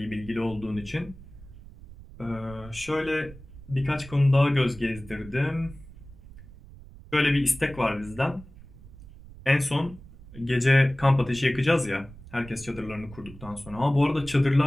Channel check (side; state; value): right; noise; rumble, 18 dB below the sound